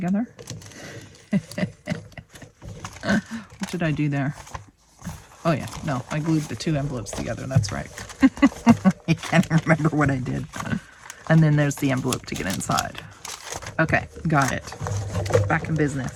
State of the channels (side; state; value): both; identical; correlation 1.00